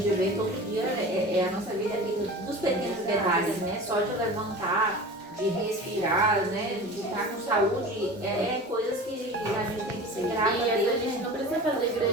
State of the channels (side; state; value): both; normal; correlation 0.36